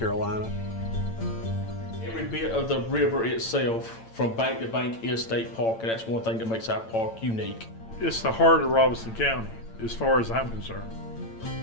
Every bit of the river itself, from bank to bank, is state park, and that's one thing that makes our park unique. It's the heart of Robeson County, as far as I'm concerned.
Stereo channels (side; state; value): right; late; 8.9 ms